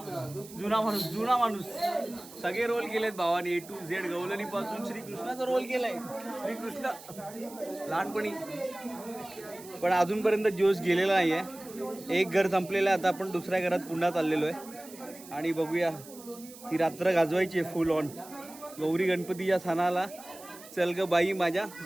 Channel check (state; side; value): noise; right; hiss, 18 dB below the sound